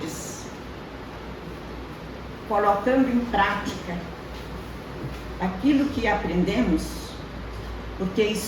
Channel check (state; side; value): identical; both; correlation 1.00